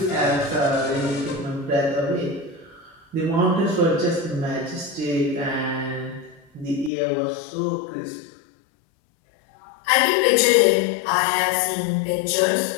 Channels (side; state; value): right; drops out; at 6.9 s